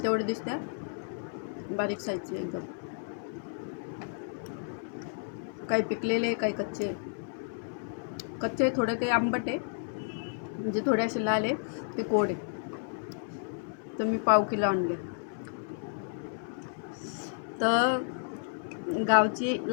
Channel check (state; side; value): silent; right; digital silence